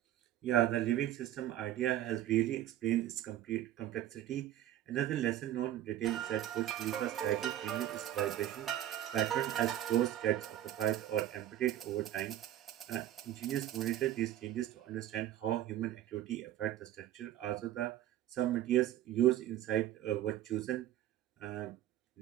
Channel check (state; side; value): quieter; left; 12.7 dB